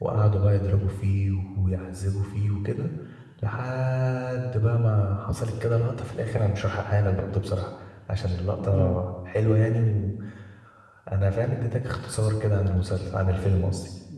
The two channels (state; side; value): identical; both; correlation 1.00